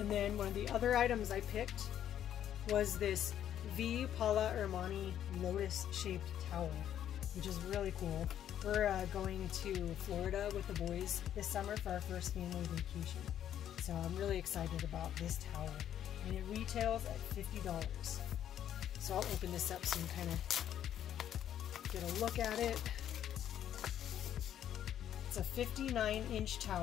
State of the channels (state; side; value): quieter; right; 10.5 dB